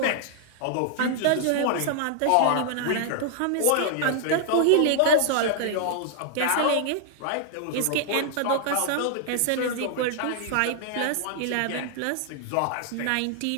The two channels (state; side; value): different; both; correlation -0.01